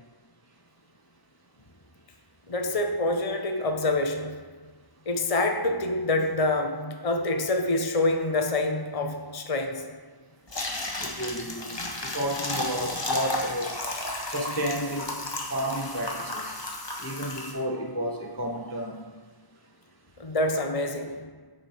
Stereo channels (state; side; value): late; right; 1.0 ms